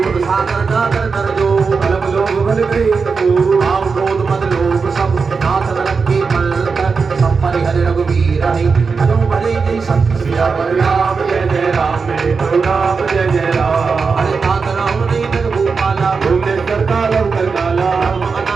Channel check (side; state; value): left; quieter; 5.0 dB